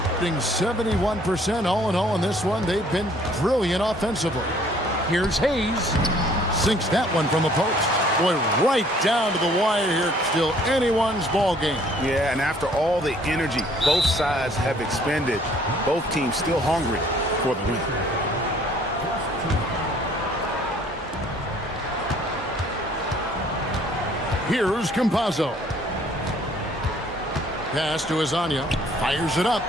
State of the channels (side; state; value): both; normal; correlation 0.59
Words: Shooting 71% all in all in this one. They've been brilliant offensively. Here's Hayes. Sinks that one from the post. Boy, right down to the wire here. Still anyone's ball game. Yeah, and after all the energy both sides have expended, both teams still hungry for the win. Here's Campazzo. Pass to Azania. Fires it up.